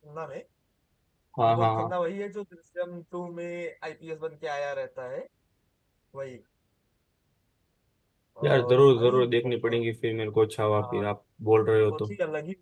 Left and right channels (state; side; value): identical; both; correlation 1.00